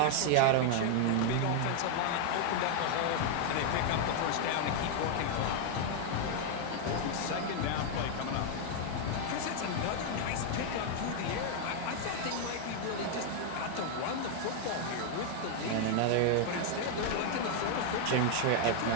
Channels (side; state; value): both; different; correlation 0.00